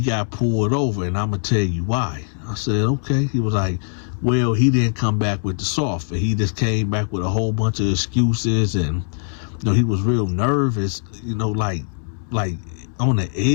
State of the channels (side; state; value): right; silent; 65 dB below the other